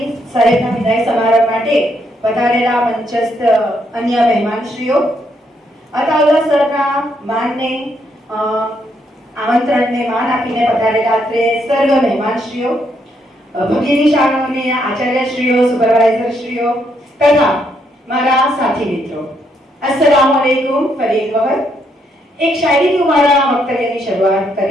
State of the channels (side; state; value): both; normal; correlation 0.75